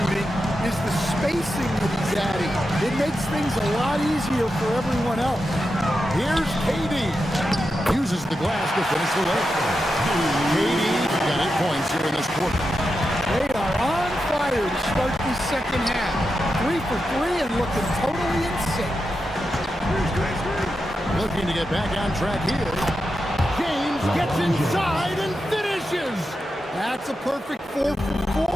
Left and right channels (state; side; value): normal; both; correlation 0.88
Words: is the spacing that he's adding. It makes things a lot easier for everyone else. Here's KD. Uses the glass to finish the leg. KD got 8 points here in this quarter. They are on fire to start the second half. 3 for 3 and looking totally in sync. Looking to get back on track here. James gets inside and finishes. That's a perfect 4